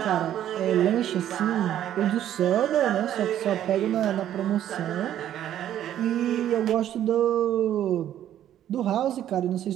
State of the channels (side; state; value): left; quieter; 11.4 dB